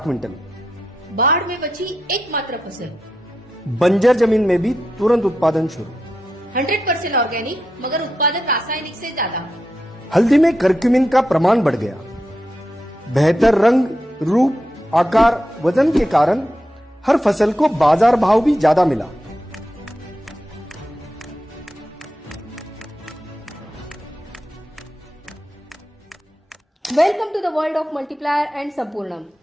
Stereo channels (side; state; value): both; normal; correlation 0.86